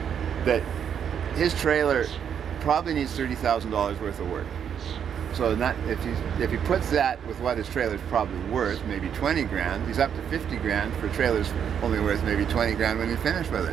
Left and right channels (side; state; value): left; quieter; 8.2 dB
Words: that his trailer probably needs $30,000 worth of work. So if he puts that with what his trailer's probably worth, maybe 20 grand, he's up to 50 grand for trailers only worth maybe 20 grand when he's finished with